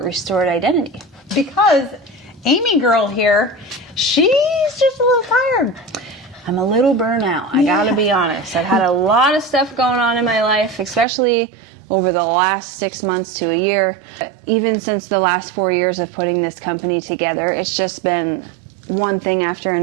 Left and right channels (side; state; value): left; drops out; at 11.1 s